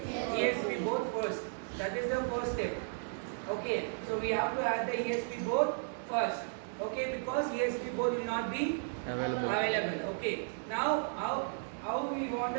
board first. That is the first step. Okay. So we have to add the ESP board first. Okay, because ESP board will not be available. Okay. Now how we want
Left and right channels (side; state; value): left; silent; digital silence